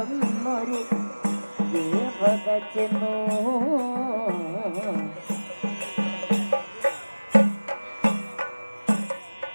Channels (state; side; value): inverted; both; correlation -1.00